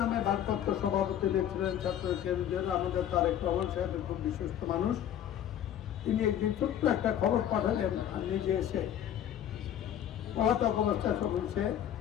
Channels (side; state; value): right; quieter; 10.4 dB